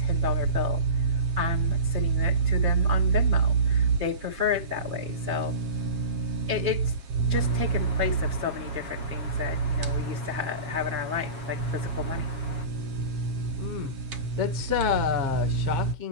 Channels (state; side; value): late; left; 7.3 ms